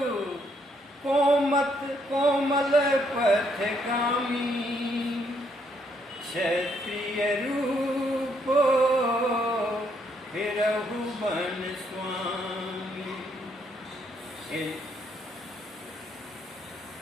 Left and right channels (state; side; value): normal; both; correlation 0.72